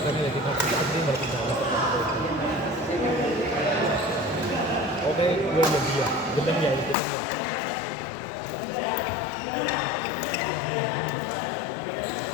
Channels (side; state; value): right; drops out; at 7.0 s